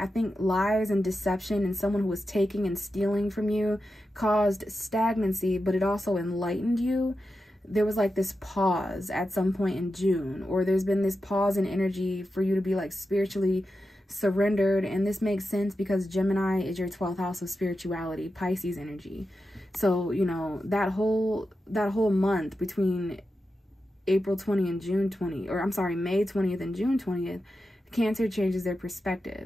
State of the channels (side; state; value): both; normal; correlation 0.90